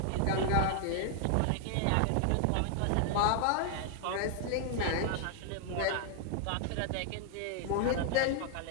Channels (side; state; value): both; different; correlation 0.00